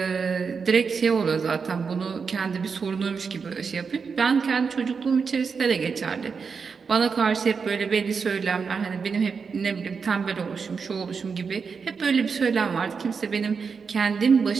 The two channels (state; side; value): quieter; left; 5.5 dB